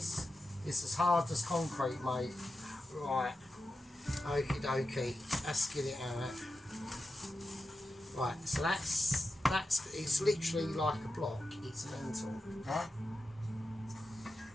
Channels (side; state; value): both; normal; correlation 0.90